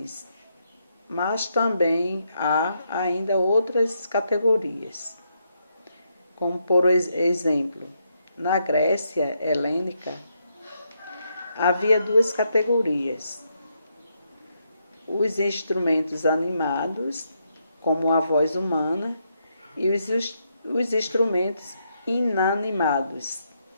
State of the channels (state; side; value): inverted; both; correlation -0.79